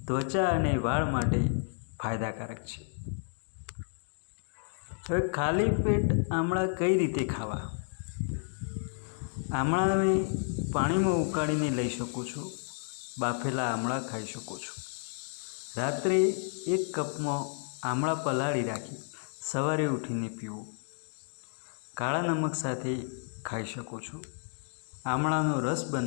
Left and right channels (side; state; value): right; silent; 57 dB below the other